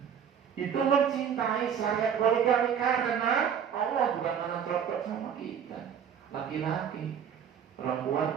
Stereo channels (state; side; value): quieter; left; 8.1 dB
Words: Itu mencintai saya poligami karena Allah, bukan karena cocok sama kita. Laki-laki,